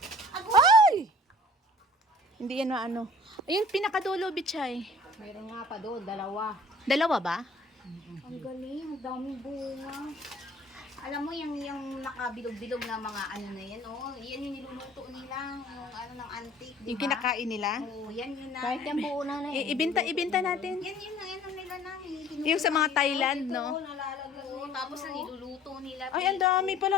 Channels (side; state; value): both; normal; correlation 0.50